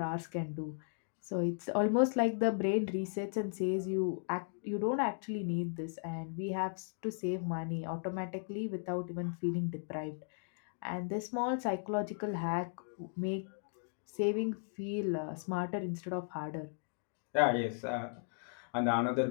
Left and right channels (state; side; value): silent; right; digital silence